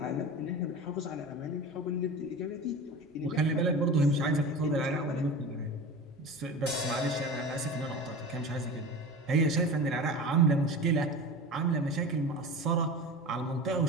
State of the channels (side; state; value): both; normal; correlation 0.32